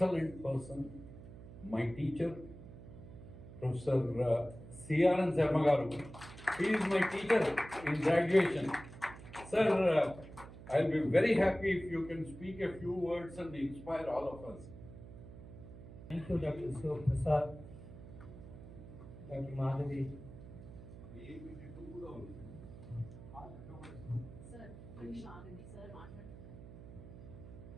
person. My teacher, Professor CRN Sharma. He is my teacher in graduation. Sir, I'll be very happy if you can speak a few words and inspire all of us. Thank you, Dr. Prasad, Dr. Madhavi.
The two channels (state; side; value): noise; right; hum, 15 dB below the sound